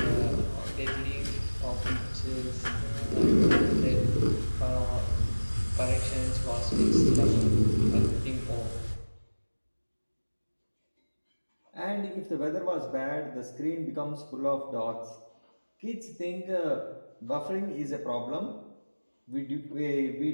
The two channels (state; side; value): inverted; both; correlation -1.00